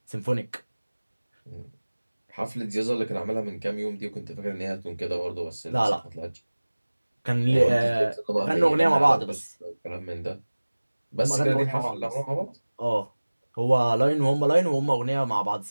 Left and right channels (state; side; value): inverted; both; correlation -1.00